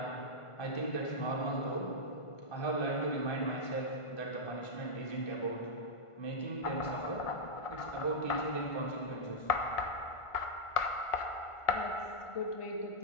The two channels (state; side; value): late; right; 1.5 ms